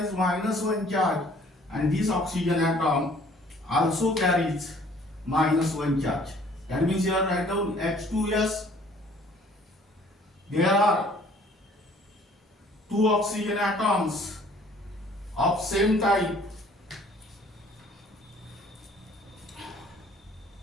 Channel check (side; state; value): both; normal; correlation 0.56